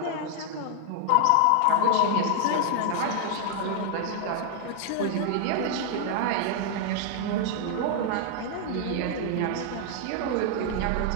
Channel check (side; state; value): both; different; correlation 0.00